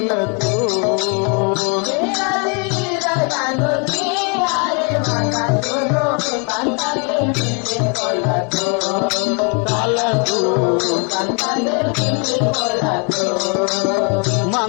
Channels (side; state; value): right; quieter; 35.9 dB